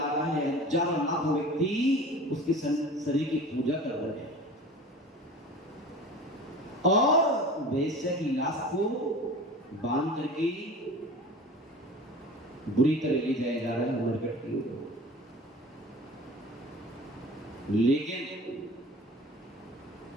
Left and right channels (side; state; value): both; normal; correlation 0.39